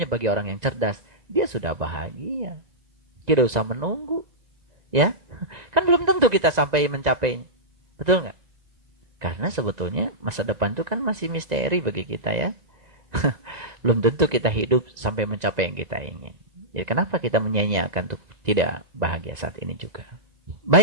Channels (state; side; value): late; left; 1.9 ms